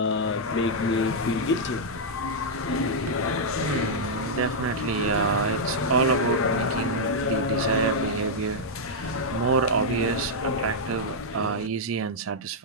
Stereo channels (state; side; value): normal; both; correlation -0.05